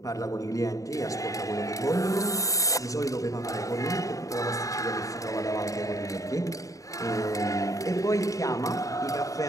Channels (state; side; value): late; right; 0.16 ms